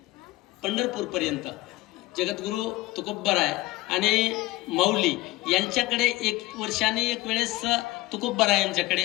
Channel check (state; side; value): quieter; right; 19.0 dB